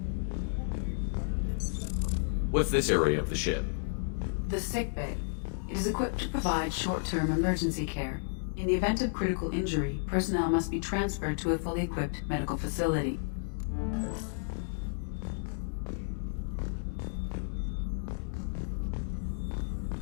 What's this area of the ship? The sickbay. It is equipped to provide short-term emergency care. In the event of critical injury, personnel must be transferred to a fully equipped medical facility.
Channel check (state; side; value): silent; right; 56 dB below the other